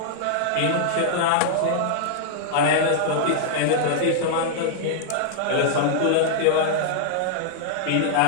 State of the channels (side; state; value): both; different; correlation -0.01